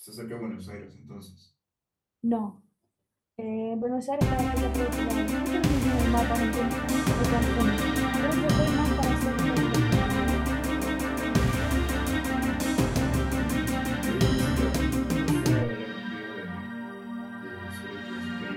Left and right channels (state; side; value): identical; both; correlation 1.00